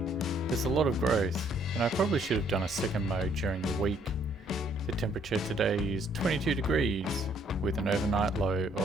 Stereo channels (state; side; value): normal; both; correlation 0.66